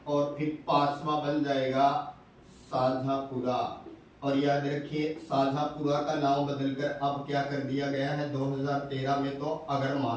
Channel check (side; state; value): both; identical; correlation 1.00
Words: और फिर 5वां बन जाएगा साझापुरा। और याद रखिए साझापुरा का नाम बदलकर अब क्या कर दिया गया है 2013 में तो अगर